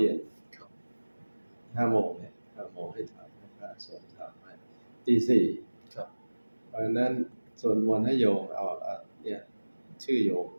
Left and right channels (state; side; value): inverted; both; correlation -1.00